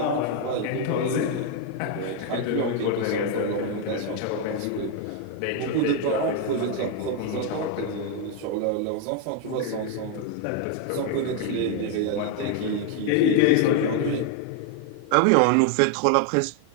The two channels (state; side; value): different; both; correlation 0.01